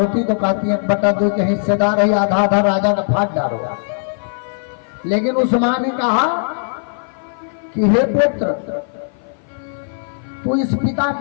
तो कहती है 1/2 के हिस्सेदार है, आधा आधा राजा का भाग डालो। लेकिन उस माँ ने कहा कि हे पुत्र, तू इस पिता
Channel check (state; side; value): silent; right; 55 dB below the other